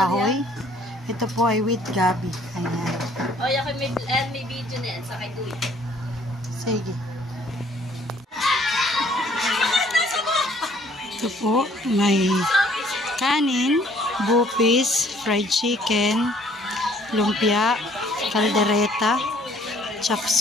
Ito po ay with gabi. Ayan. O, yakin may video na yan. Sakay tuwi. Sige. Ito po, may kanin, bupis, fried chicken, lumpia, kaldereta,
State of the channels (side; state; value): both; normal; correlation 0.60